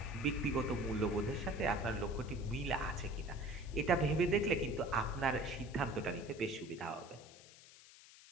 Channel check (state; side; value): noise; left; hiss, 20 dB below the sound